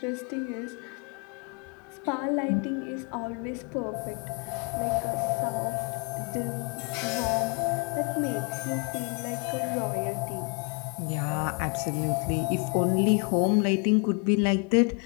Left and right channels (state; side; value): quieter; right; 34.8 dB